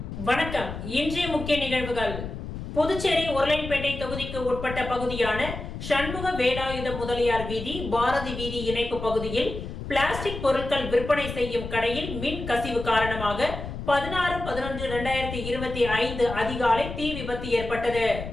வணக்கம். இன்றைய முக்கிய நிகழ்வுகள். புதுச்சேரி உருளையன்பேட்டை தொகுதிக்கு உட்பட்ட பகுதியான சண்முக வேலாயுத முதலியார் வீதி, பாரதி வீதி இணைப்பு பகுதியில் பிளாஸ்டிக் பொருட்கள் விற்பனை செய்யும் கடையில் மின் கசிவு காரணமாக 16/11/2025 அதிகாலை தீ விபத்து ஏற்பட்டது.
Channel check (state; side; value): noise; left; rumble, 8 dB below the sound